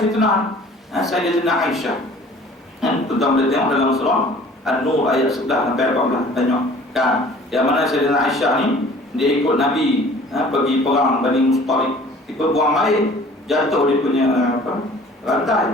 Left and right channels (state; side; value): normal; both; correlation 0.49